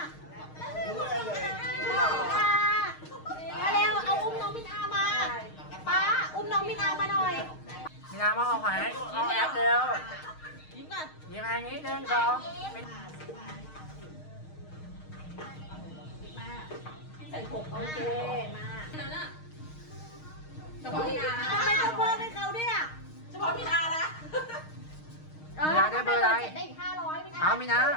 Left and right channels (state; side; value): late; right; 6.4 ms